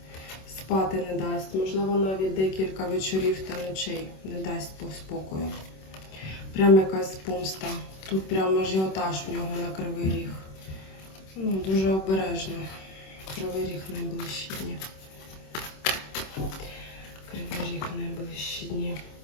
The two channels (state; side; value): late; right; 26 ms